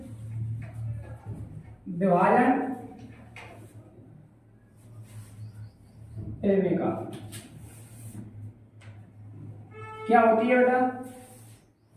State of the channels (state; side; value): identical; both; correlation 1.00